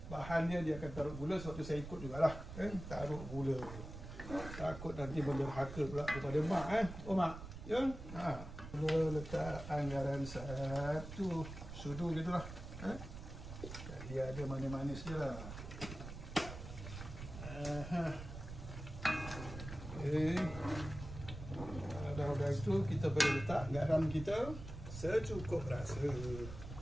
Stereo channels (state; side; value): noise; right; rumble, 10 dB below the sound